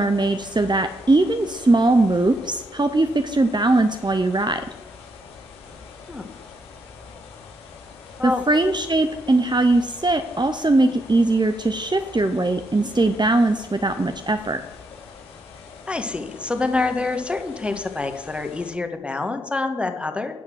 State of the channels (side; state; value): both; normal; correlation 0.79